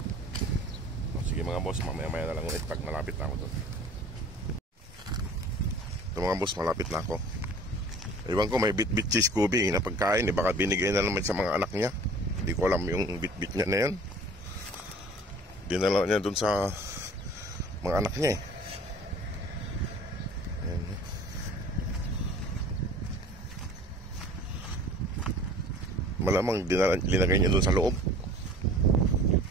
Sige mga boss, mamaya-maya na lang ulit pag malapit na ako doon. Ito mga boss, malapit na ako. Iwan ko may bit-bit cheese Scooby na pagkain. Baka binigay na naman sa mga anak niya. Hindi ko alam yung bit-bit niya na yan. Dinala niya doon sa mga anak niya eh. Ayan. Malamang linagay niya doon sa loob.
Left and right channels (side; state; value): both; normal; correlation 0.47